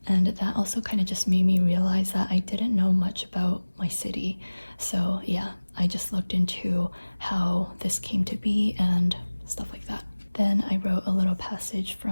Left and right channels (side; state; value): both; inverted; correlation -1.00